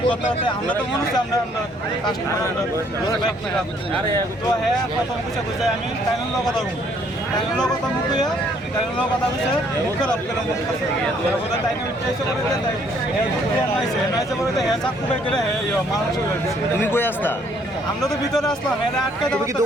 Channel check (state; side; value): normal; both; correlation 0.65